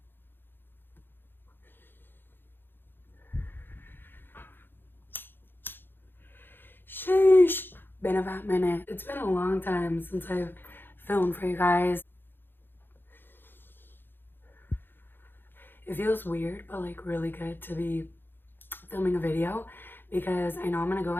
Sheesh. Been a fat minute. It's been a long time since I've filmed for you guys. It feels weird, but like really good to be filming a video, because I know I'm gonna go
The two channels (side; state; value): right; late; 0.099 ms